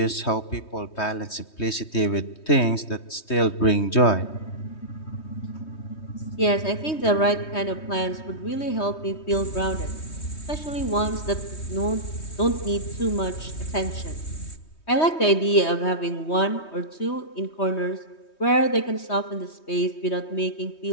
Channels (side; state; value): right; late; 3.2 ms